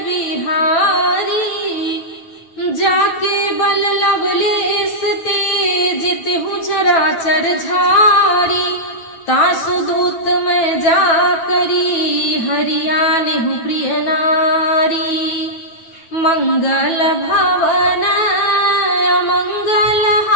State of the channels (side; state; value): right; late; 9.1 ms